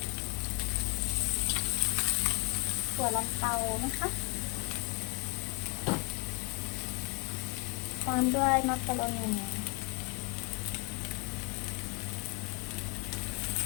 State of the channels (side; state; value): right; quieter; 27.2 dB